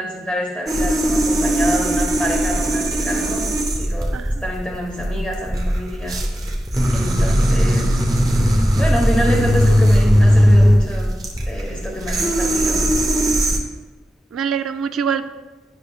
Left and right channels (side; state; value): both; normal; correlation 0.91